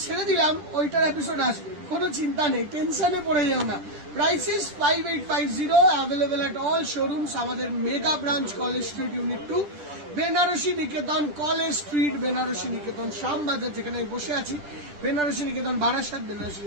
ছেড়ে দিলাম ওইটার এপিসোড আসবে, কোনো চিন্তা নেই, টেনশনে পড়ে যাও না। Prices 5850, available at all showrooms. আমাদের mega branch College Street unit 2, Benarasi Niketan College Street, Benarasi Niketan Shyambazar যেখানে আমি বসে আছি, বেনারসি নিকেতন বারাসাত, বেনারসি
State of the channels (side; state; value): left; late; 10 ms